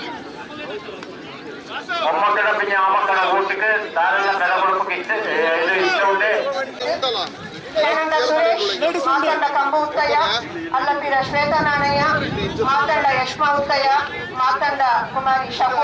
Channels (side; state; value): both; identical; correlation 1.00